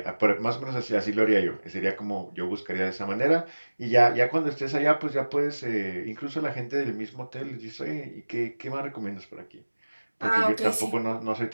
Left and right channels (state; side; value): inverted; both; correlation -1.00